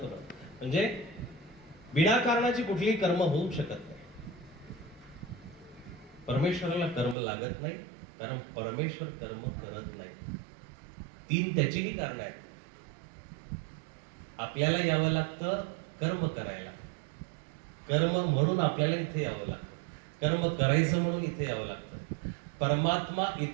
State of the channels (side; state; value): left; drops out; at 7.2 s